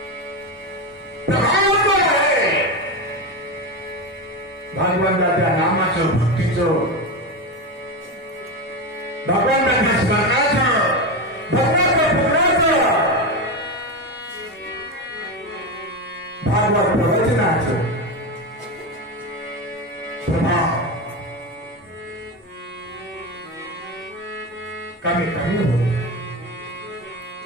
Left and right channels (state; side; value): normal; both; correlation 0.17